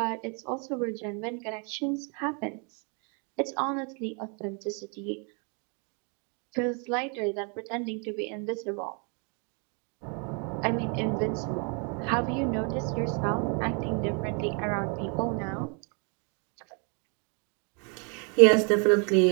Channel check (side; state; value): left; quieter; 36.7 dB